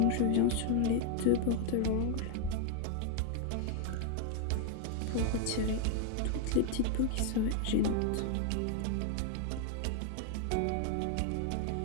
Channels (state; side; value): different; both; correlation 0.00